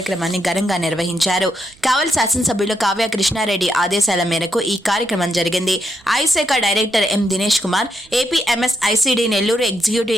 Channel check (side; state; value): right; noise; rumble, 28 dB below the sound